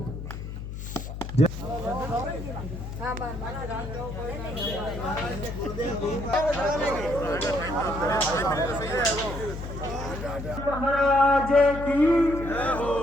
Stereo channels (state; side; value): noise; left; hum, 8 dB below the sound